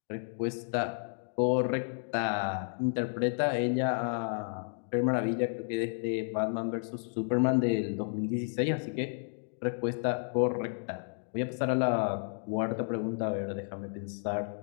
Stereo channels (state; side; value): silent; right; digital silence